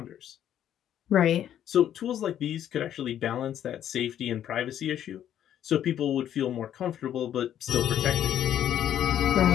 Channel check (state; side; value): quieter; right; 10.6 dB